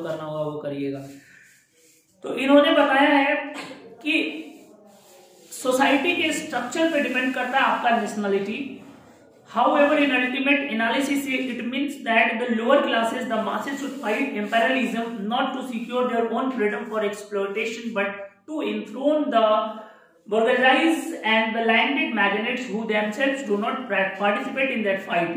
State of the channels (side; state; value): both; identical; correlation 1.00